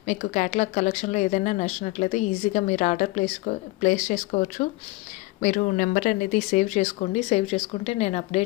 మీకు క్యాటలాగ్ కలెక్షన్లో ఏదైనా నచ్చినట్లయితే ఈజీగా మీరు ఆర్డర్ ప్లేస్ చేసుకోవచ్చు. మీరు నెంబర్ అనేది సేవ్ చేసుకోండి. సేవ్ చేసుకుంటే నేను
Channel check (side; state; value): right; quieter; 21.0 dB